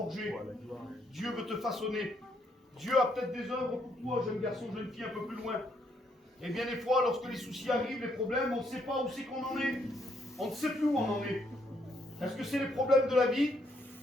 Dieu veut te façonner. Dieu a peut-être des œuvres pour toi, jeune garçon, jeune fille, un peu plus loin. Et bien des fois, lorsque les soucis arrivent, les problèmes, on ne sait pas où c'est qu'on en est. On ne sait plus où on en est. Est-ce que c'est les problèmes de la vie?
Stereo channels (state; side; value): normal; both; correlation 0.73